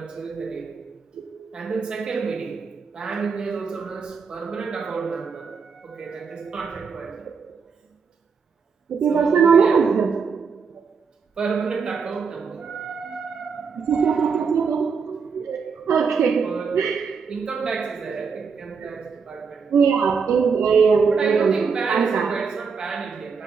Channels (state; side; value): quieter; left; 5.6 dB